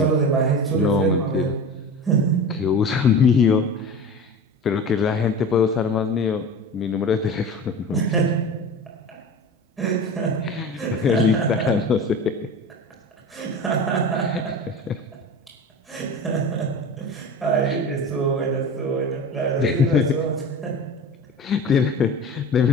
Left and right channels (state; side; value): normal; both; correlation 0.33